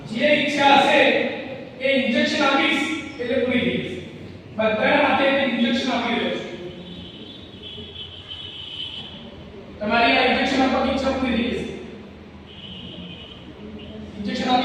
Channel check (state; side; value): identical; both; correlation 1.00